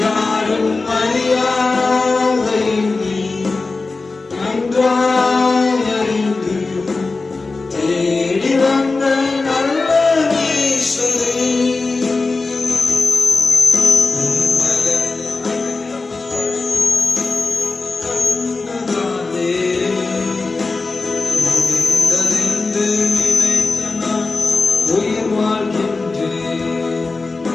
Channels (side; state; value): right; quieter; 3.8 dB